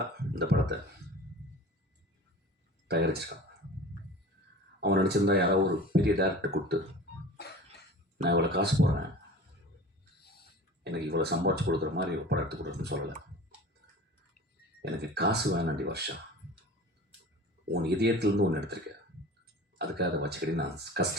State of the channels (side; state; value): both; normal; correlation 0.39